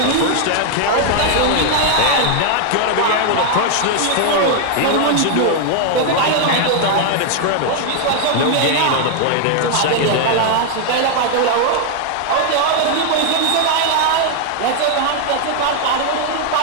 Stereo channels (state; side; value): different; both; correlation 0.00